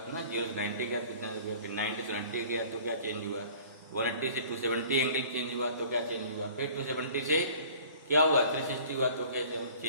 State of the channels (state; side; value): inverted; both; correlation -0.48